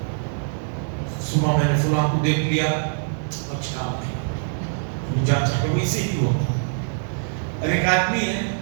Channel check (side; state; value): left; silent; digital silence